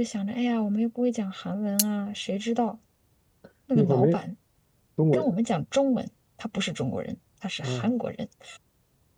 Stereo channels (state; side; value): identical; both; correlation 1.00